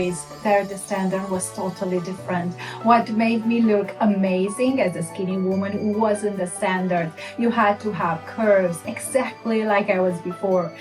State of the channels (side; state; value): both; identical; correlation 1.00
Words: There the standard was totally different. What made me look amazing as a skinny woman wasn't the standard. You had to have curves, exactly like I was before.